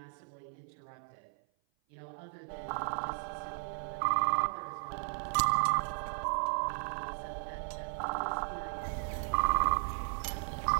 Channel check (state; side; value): silent; left; 54 dB below the other